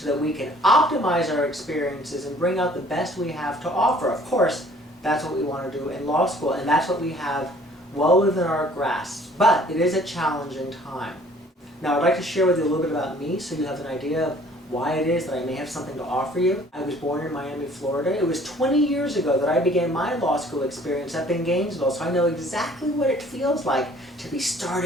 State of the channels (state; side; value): normal; both; correlation 0.55